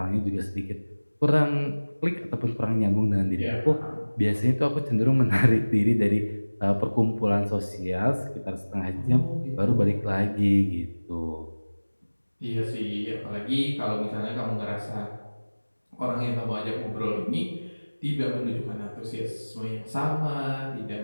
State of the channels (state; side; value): inverted; both; correlation -1.00